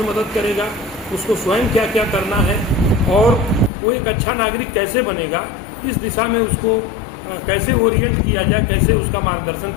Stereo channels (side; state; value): right; drops out; at 3.7 s